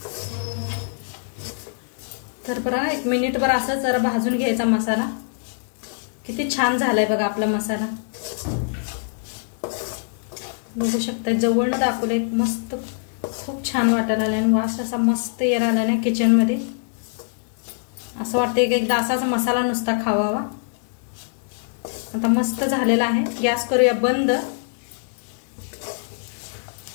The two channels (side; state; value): right; silent; digital silence